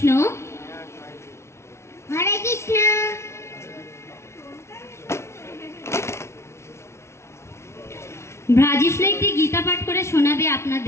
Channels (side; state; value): right; late; 0.13 ms